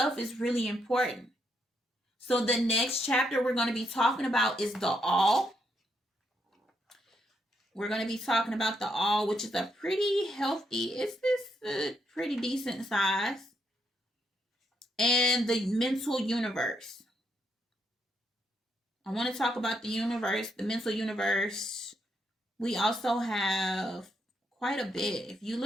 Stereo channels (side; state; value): both; normal; correlation 0.78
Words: is really important. So the next chapter we're going to be talking about is the all. We're going to be talking about the all, which is a pretty healthy, it's this pretty decent size. And the mental universe. I want to talk about the universe, the mental universe. We also have quite a bit. If you